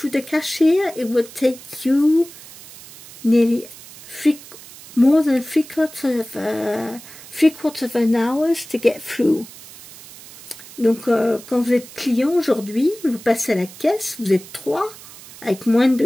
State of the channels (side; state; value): right; noise; hiss, 18 dB below the sound